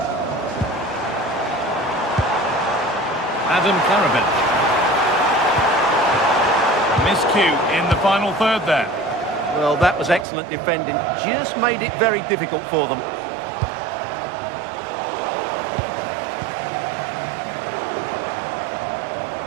Adam Karabech. Miscue in the final third there. Well, that was excellent defending. Just made it very difficult for them.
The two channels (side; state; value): left; drops out; at 10.2 s